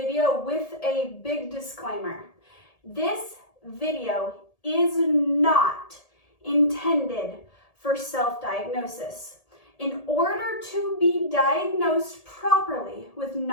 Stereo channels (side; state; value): right; late; 1.8 ms